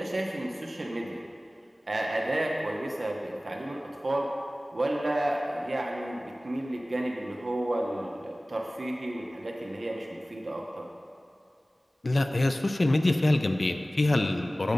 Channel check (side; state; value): both; normal; correlation 0.97